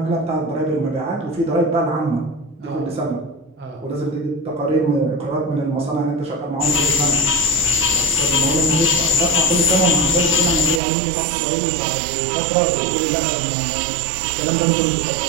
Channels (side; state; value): left; drops out; at 10.8 s